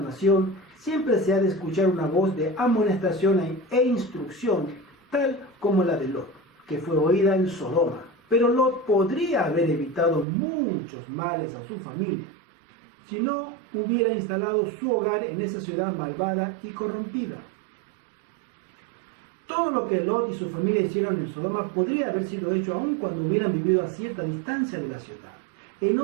siempre se ha de escuchar una voz de amonestación e instrucción, tal como la de Lot, que fue oída en Sodoma. Pero Lot podría haber evitado muchos males a su familia si no hubiera instalado su hogar en esa ciudad malvada y corrompida. Todo lo que Lot y su familia hicieron en Sodoma podría haber sido hecho aun cuando hubieran vivido a cierta distancia de la ciudad.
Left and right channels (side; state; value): left; drops out; at 10.2 s